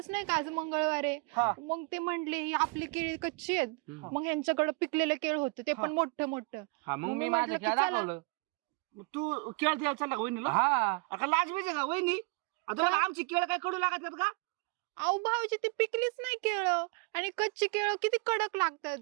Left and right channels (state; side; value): quieter; left; 30.6 dB